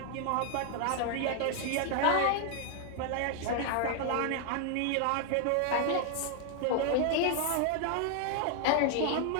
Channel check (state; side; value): different; both; correlation 0.00